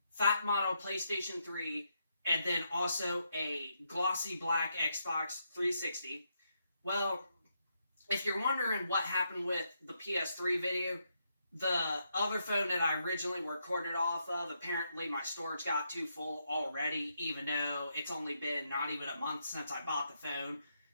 fat model PlayStation 3 and then also a glossy black Xbox 360. Well, if you're wondering what happened with the PS3 video, the other phone that I originally recorded off of, apparently my storage got too full already, even though it's only been not even a month since I bought the phone,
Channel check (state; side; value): inverted; both; correlation -0.80